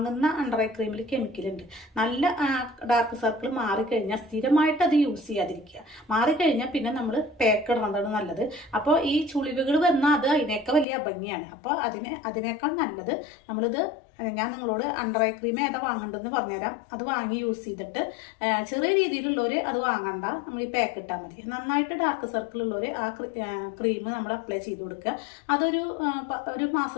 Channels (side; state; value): right; drops out; at 10.9 s